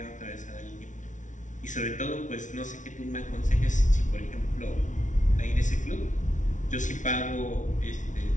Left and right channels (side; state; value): right; late; 0.37 ms